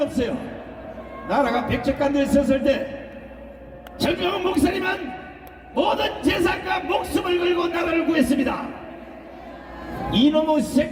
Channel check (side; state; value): both; identical; correlation 1.00